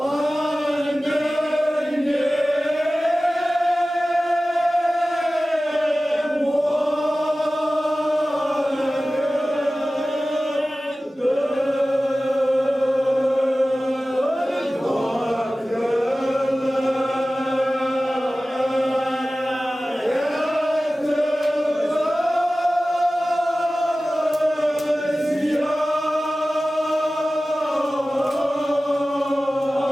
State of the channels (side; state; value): both; normal; correlation 0.96